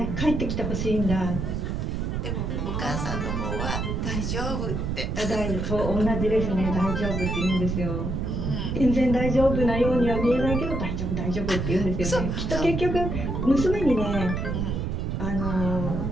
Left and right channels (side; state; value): right; noise; rumble, 1 dB below the sound